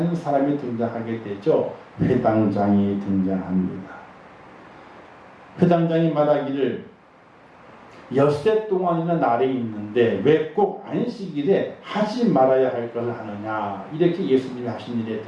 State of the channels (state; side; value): identical; both; correlation 1.00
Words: 사람이 등장하게 되죠. 회당장이 등장합니다. 회당장이 말하기를 엿새 동안이나 날이 있는데 왜 꼭 안식일에 하지 말아야 할 것을 하느냐, 이렇게 예수님이 하신 일에